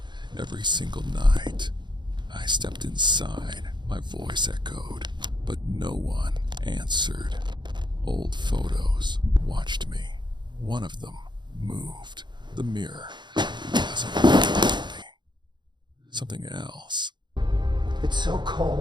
every single night. I stepped inside, my voice echoed, but no one answered. Old photos watched me. One of them moved. The mirror wasn't me. Something else. It's so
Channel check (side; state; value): left; late; 0.22 ms